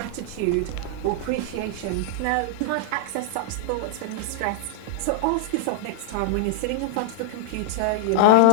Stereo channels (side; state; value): both; different; correlation -0.01